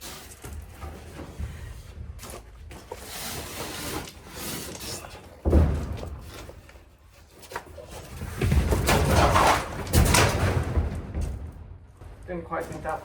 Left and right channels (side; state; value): both; identical; correlation 1.00